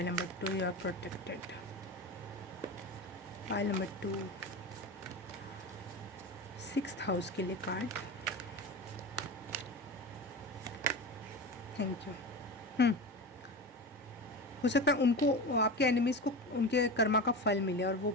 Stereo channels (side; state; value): both; normal; correlation 0.26